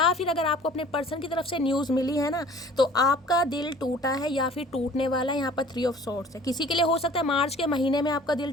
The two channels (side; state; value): both; normal; correlation 0.49